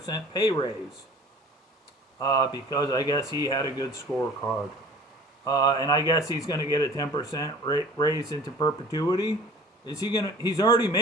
pay raise because I guess he had a good scorecard. And I guess he's going to get a 10% raise into perpetuity. He's already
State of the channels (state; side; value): normal; both; correlation 0.46